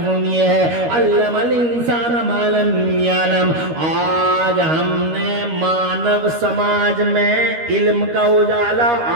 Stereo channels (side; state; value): left; late; 13 ms